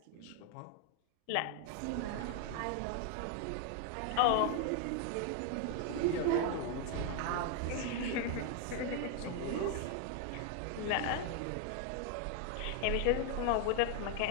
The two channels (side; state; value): both; different; correlation 0.00